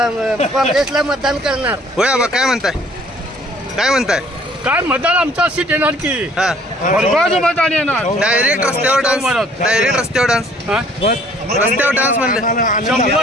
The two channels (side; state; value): both; normal; correlation 0.57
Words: काँग्रेसला मतदान करणार. होय आबा, काय म्हणताय? काय मतदान आमचा सीट येणार की भरघोस मतदान येणार. डायरेक्ट रस्त्यावर डान्स म्हणलं